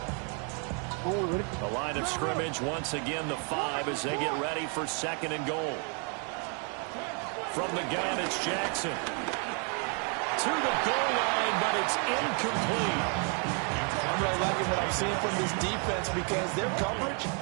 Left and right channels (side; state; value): left; quieter; 38.5 dB